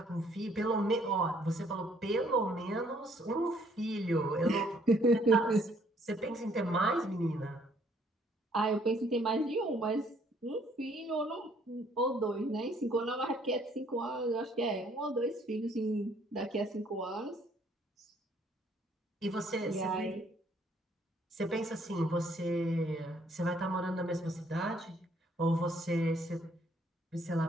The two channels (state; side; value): normal; both; correlation 0.64